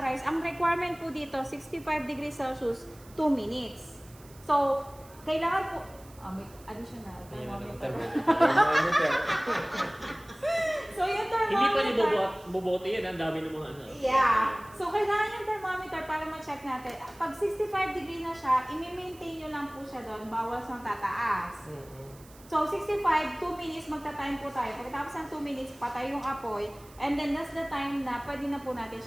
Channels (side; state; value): right; noise; hiss, 24 dB below the sound